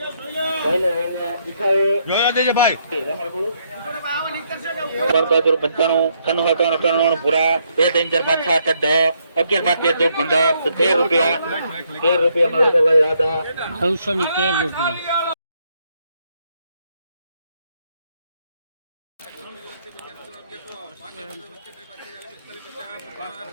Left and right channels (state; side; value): inverted; both; correlation -0.73